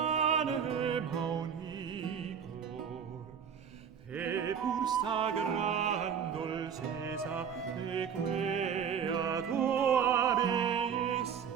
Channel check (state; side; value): quieter; left; 7.6 dB